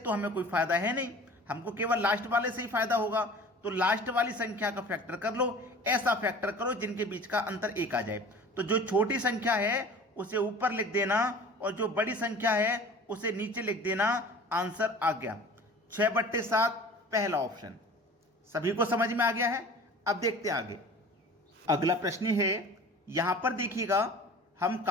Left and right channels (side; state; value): both; normal; correlation 0.43